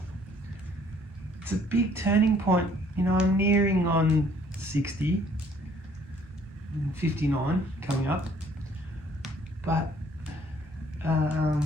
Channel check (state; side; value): normal; both; correlation 0.60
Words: It's a big turning point. You know, I'm nearing on 60, 59 coming up, but